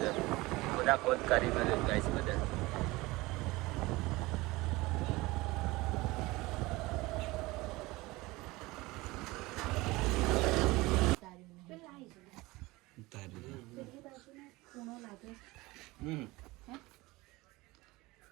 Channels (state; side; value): quieter; left; 21.3 dB